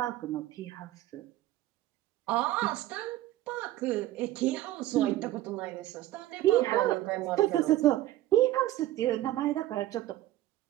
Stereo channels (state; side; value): quieter; left; 15.1 dB